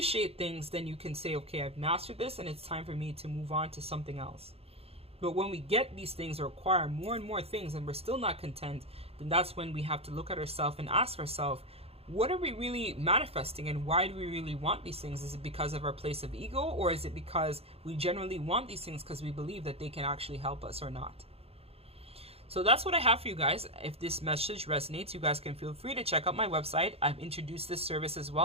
things, then you can say, okay, I've mastered this and it's time for me to move on to something else. But when we get these things or acquire more and more things and we're still not content, then that's when we have to look at ourselves and ask ourselves, what are we really manifesting and why do we really want these things? Is it because of our place of ego, or is it because we generally want these things because we believe that they can actually help us or not? So that's what I have for you guys. If this message resonates, you guys can feel free to check out my website. I've introduced this service as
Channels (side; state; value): left; late; 0.29 ms